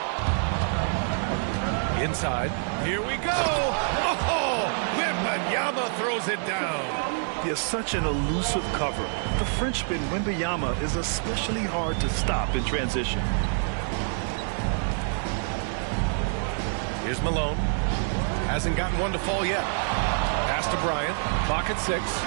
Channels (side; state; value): left; silent; 60 dB below the other